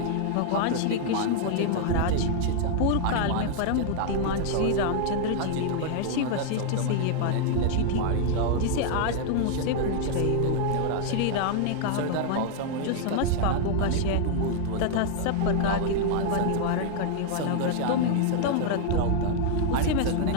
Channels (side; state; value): both; different; correlation 0.00